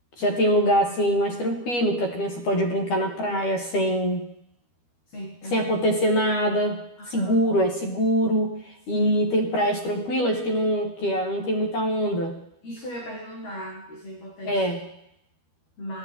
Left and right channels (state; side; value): late; right; 12 ms